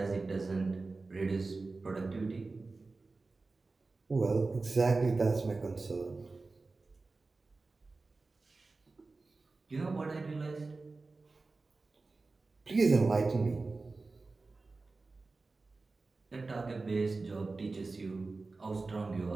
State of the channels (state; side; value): quieter; left; 3.7 dB